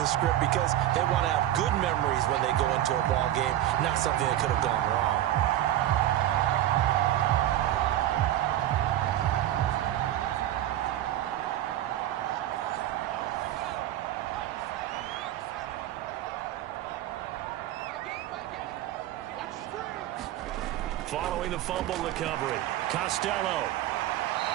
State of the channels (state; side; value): quieter; left; 13.1 dB